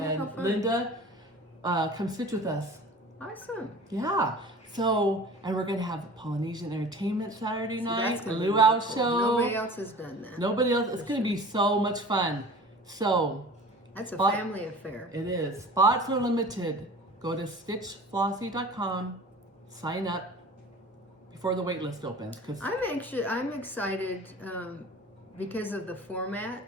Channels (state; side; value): normal; both; correlation 0.41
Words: Linda, come stitch with us. Awesome. Yeah. So, and we're going to have Polynesian entertainment Saturday night, a luau show. Nobody else has done that. Nobody else. It's going to be so much fun. So, that's a family affair. It is. Spots are limited. Go to stitchflossy.com, sign up before the wait list opens. I'm excited because of the format.